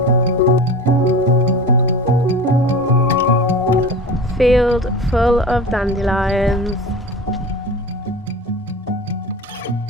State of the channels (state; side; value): normal; both; correlation 0.33